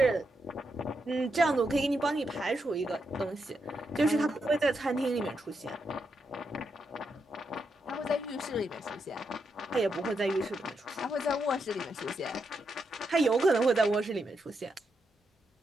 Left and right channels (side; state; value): both; normal; correlation 0.83